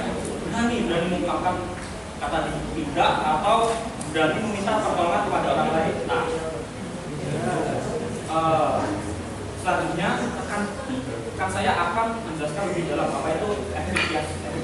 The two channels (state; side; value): identical; both; correlation 1.00